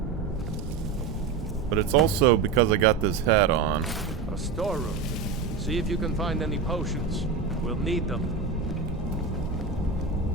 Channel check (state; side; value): quieter; left; 5.2 dB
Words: But it's also because I got this hat on. A storeroom. See if you can find any potions. We'll need them.